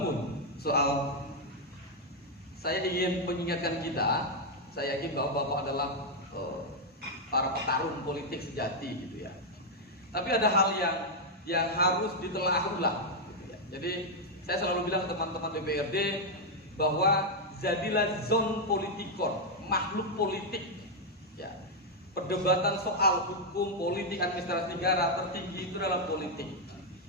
soal, saya ingin mengingatkan kita, saya yakin bahwa Bapak adalah para petarung politik sejati gitu ya. Tapi ada hal yang harus ditelaah ulang gitu ya. Jadi saya selalu bilang ke teman-teman DPRD bahwa jadilah zon politikon, makhluk politik ya. Perdebatan soal hukum, politik, administrasi negara tertinggi itu adalah politik.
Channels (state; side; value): normal; both; correlation -0.01